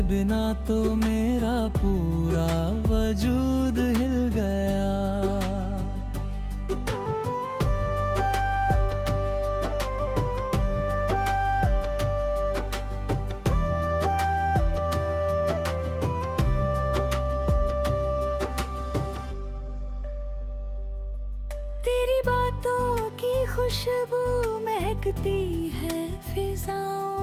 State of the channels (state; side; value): identical; both; correlation 1.00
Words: बिना तो मेरा पूरा वजूद हिल गया। तेरी बातों की खुशबू महकती है